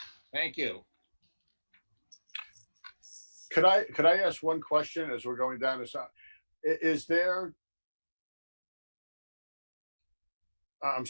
Thank you. Could I ask one question as we're going down this? Is there? I'm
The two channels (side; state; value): both; inverted; correlation -1.00